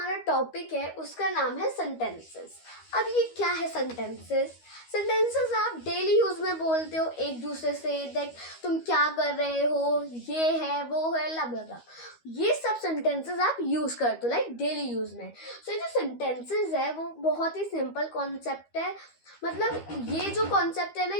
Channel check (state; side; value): late; right; 13 ms